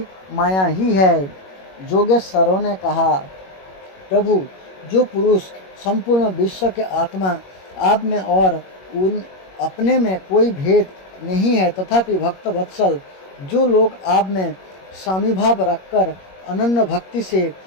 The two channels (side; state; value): right; late; 21 ms